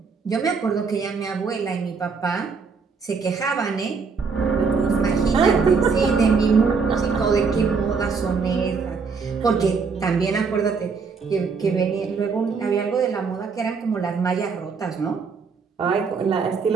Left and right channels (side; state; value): left; quieter; 5.2 dB